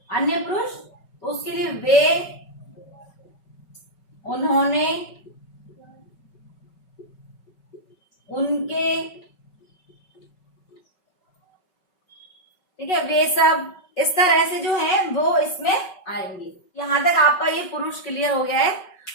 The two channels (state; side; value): late; right; 5.3 ms